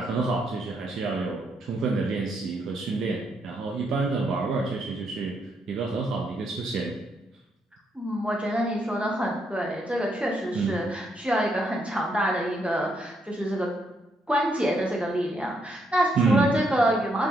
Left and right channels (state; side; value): normal; both; correlation 0.76